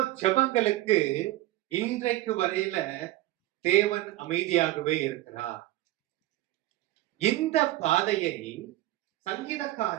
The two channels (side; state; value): left; quieter; 16.2 dB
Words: ஜெபங்களுக்கு இன்றைக்கு வரையில தேவன் அமைதியாகவே இருக்கிறார். இந்த பாதையை